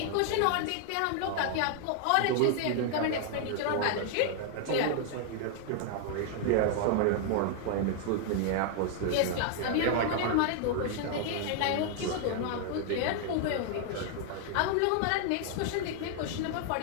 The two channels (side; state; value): both; different; correlation 0.00